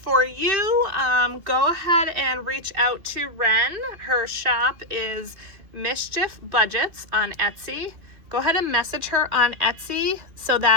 you, go ahead and reach out to Ren. Her shop is Mischief Budgets on Etsy. Go ahead and message her on Etsy so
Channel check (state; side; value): late; left; 2.7 ms